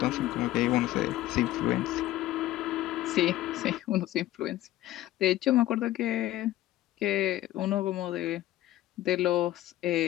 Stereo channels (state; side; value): quieter; right; 15.1 dB